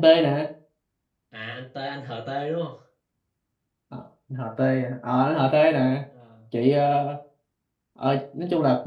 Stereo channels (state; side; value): identical; both; correlation 1.00